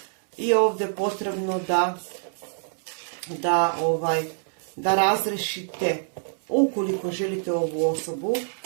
i ovdje je potrebno da razrešite. Ukoliko želite ovu osobu,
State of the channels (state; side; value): silent; left; 61 dB below the other